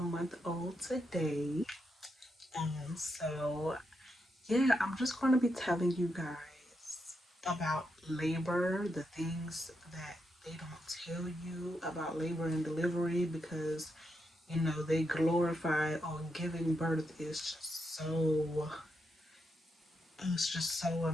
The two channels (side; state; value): both; normal; correlation 0.83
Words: old today. So yeah, I'm just going to be telling you guys about labor, the things that they don't tell you about labor and delivery, because they glorify giving birth is just so, it's just so